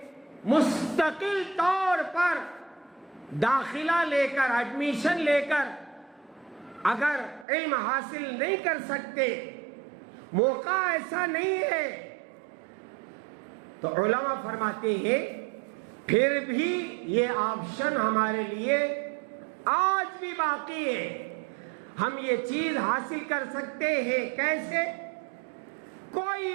مستقل طور پر داخلہ لے کر، ایڈمیشن لے کر اگر علم حاصل نہیں کر سکتے، موقع ایسا نہیں ہے، تو علماء فرماتے ہیں پھر بھی یہ آپشن ہمارے لیے آج بھی باقی ہے. ہم یہ چیز حاصل کر سکتے ہیں. کیسے؟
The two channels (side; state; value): left; drops out; at 7.5 s